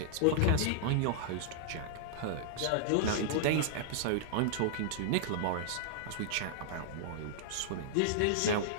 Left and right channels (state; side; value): different; both; correlation -0.01